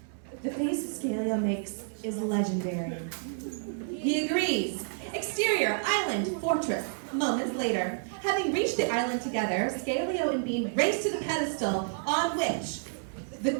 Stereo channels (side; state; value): left; silent; digital silence